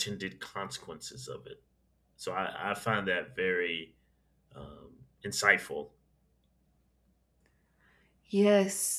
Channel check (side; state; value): both; identical; correlation 1.00